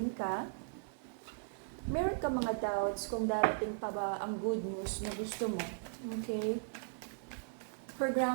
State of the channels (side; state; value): left; silent; digital silence